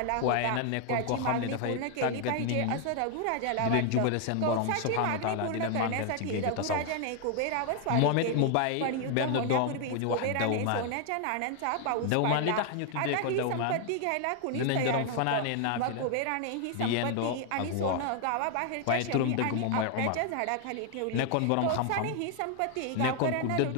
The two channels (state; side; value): different; both; correlation 0.00